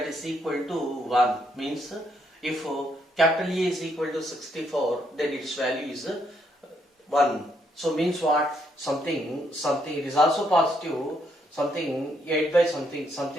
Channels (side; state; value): both; normal; correlation 0.74